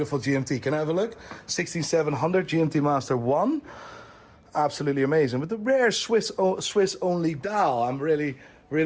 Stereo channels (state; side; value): identical; both; correlation 1.00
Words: GMT. Can I have a look? 16700 GMT Master 1. Absolutely amazing. With the rare Swiss only dial. I'm really